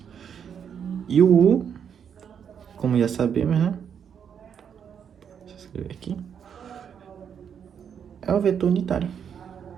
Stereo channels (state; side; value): quieter; left; 7.8 dB